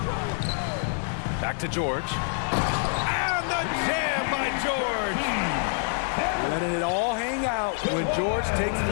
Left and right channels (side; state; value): right; silent; 61 dB below the other